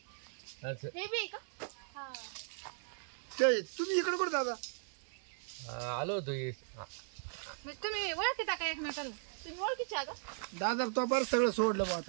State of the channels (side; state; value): left; silent; digital silence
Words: असं हे बी आहे का? हा ते तुम्ही इकडे कुठे दादा? आलो होतो मग तुम्ही ओळखीता का एकमेकाला? तुम्ही ओळखीचे आहे का? दादा तो बरं सगळं सोडलं बा